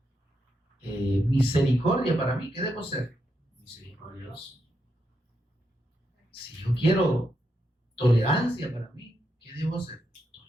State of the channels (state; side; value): normal; both; correlation 0.82